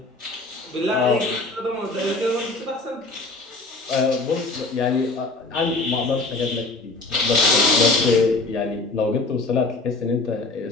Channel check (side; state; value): right; quieter; 3.2 dB